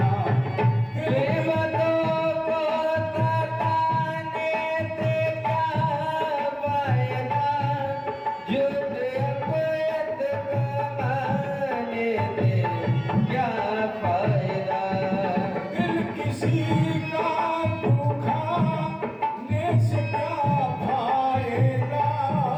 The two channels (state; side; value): identical; both; correlation 1.00